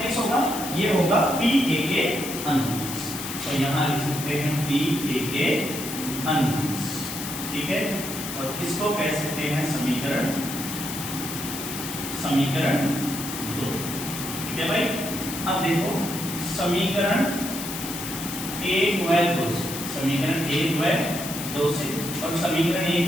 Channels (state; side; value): noise; left; hiss, 7 dB below the sound